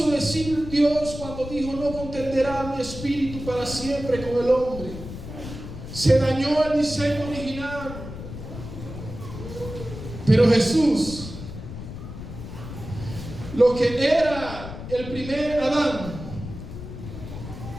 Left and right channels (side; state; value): left; noise; rumble, 10 dB below the sound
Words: decir Dios cuando dijo: no contenderá mi espíritu para siempre con el hombre. Se dañó el diseño original. Pero Jesús, lo que era el primer Adán,